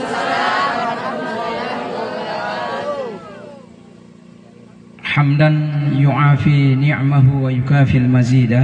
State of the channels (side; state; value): both; identical; correlation 1.00